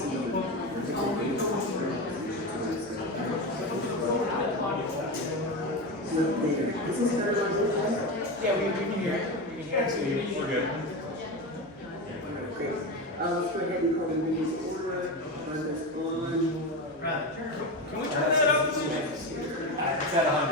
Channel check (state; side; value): normal; both; correlation 0.19